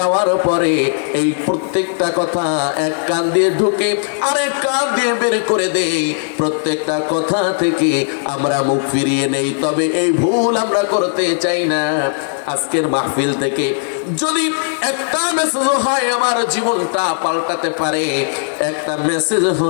পরে এই প্রত্যেকটা কথা এক কান দিয়ে ঢুকে আরেক কান দিয়ে বের করে দেই। প্রত্যেকটা কথা থেকে আমরা মুখ ফিরিয়ে নেই। তবে এই ভুল আমরা করতে চাই না। আজকের মাহফিল থেকে যদি একটা মেসেজ হয় আমার জীবনটা পাল্টাতে পারে, একটা মেসেজ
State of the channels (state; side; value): silent; right; digital silence